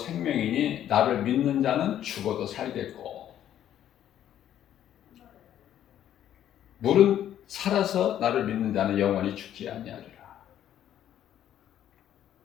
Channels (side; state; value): right; quieter; 11.1 dB